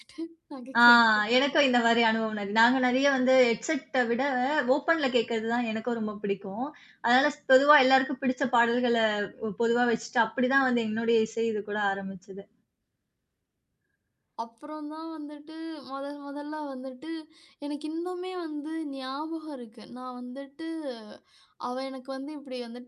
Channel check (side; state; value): both; identical; correlation 1.00